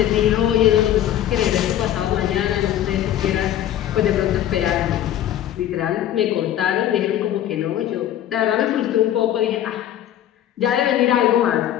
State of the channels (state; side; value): quieter; right; 11.7 dB